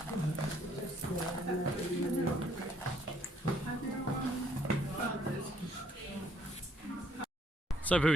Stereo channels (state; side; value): normal; both; correlation 0.66